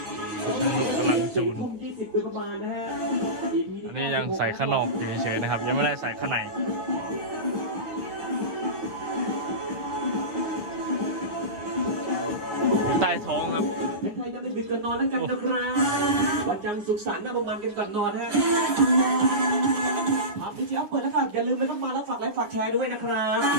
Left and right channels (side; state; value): left; late; 9.4 ms